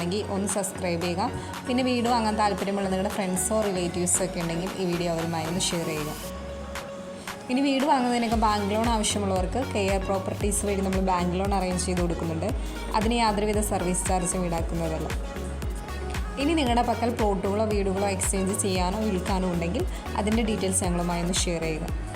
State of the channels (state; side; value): identical; both; correlation 1.00